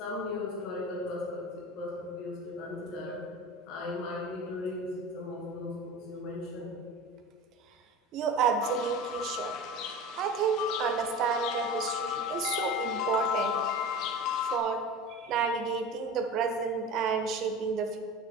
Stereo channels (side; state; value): both; normal; correlation 0.33